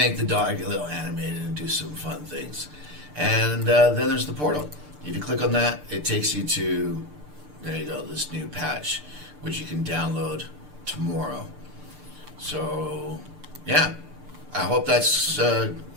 the dog a little animated and do some fun things. And then there's the portal. If you click on that, it takes you to, there you go, this new patch, which you can download tomorrow. So, yeah. I hope that's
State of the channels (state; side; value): late; left; 6.7 ms